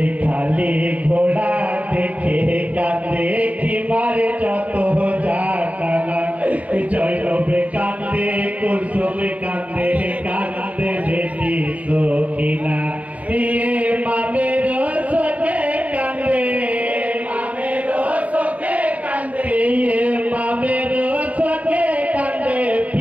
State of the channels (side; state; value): left; late; 0.069 ms